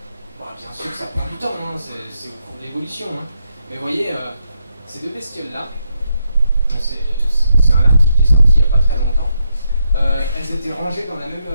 Bon, bien sûr que ça prend du temps, hein, c'est au cours de l'évolution, hein. Mais vous voyez, ces deux bestioles-là, c'est un article qui est sorti il n'y a pas très longtemps, elles étaient rangées dans la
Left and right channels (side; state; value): both; inverted; correlation -0.81